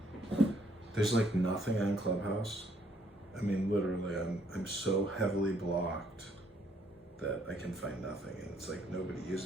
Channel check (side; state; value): both; normal; correlation 0.68